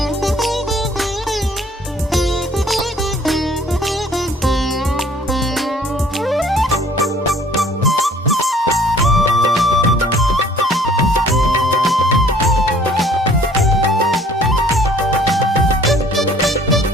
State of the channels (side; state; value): both; normal; correlation 0.55